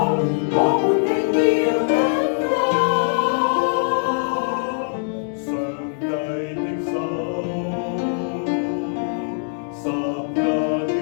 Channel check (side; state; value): right; silent; digital silence